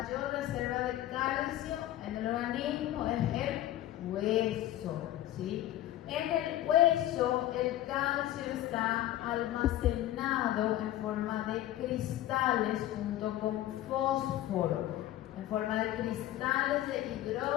reserva de calcio en el organismo es el hueso, ¿sí? En el hueso el calcio está almacenado en forma de cristales junto con fósforo, en forma de cristales de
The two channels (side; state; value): right; quieter; 13.9 dB